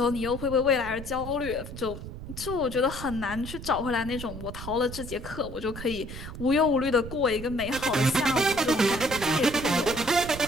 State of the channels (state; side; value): noise; right; rumble, 11 dB below the sound